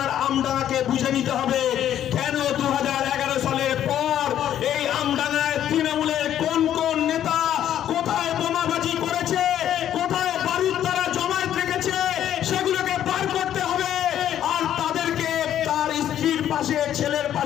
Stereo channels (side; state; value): right; quieter; 10.9 dB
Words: আমডাঙ্গাকে বুঝে নিতে হবে কেন 2011 সালের পর এই আমডাঙ্গায় তৃণমূলের কোন কোন নেতা কোথায় বোমাবাজি করেছে, কোথায় বারুদ তারা জমায়েত রেখেছে, সেগুলোকে বার করতে হবে। আর তাদেরকে তার স্ত্রীর পাশে, ছেলের